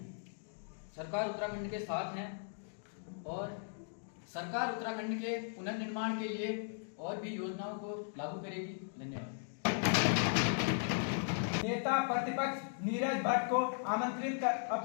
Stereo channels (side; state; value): right; silent; digital silence